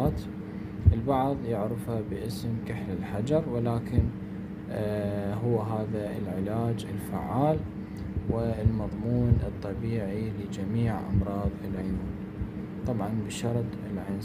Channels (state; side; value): identical; both; correlation 1.00